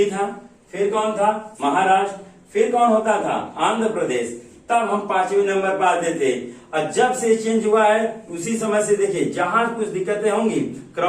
था, फिर कौन था? महाराष्ट्र, फिर कौन होता था? आंध्र प्रदेश। तब हम 5वें नंबर पर आते थे। और जब से चेंज हुआ है उसी समय से देखिए, जहां कुछ दिक्कतें होंगी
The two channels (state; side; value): identical; both; correlation 1.00